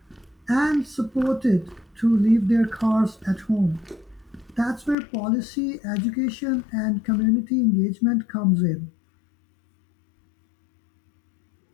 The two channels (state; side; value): drops out; right; at 5.0 s